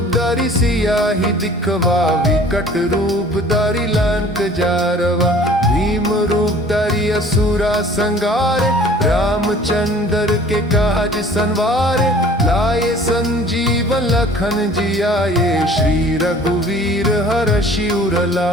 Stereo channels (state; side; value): normal; both; correlation 0.49